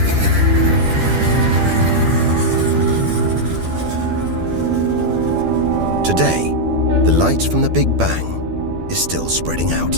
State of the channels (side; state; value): left; late; 12 ms